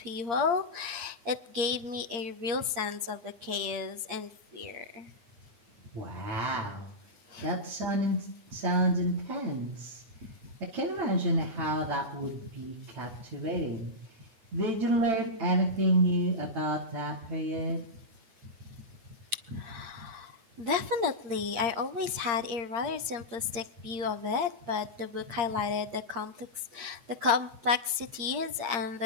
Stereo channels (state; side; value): late; left; 8.6 ms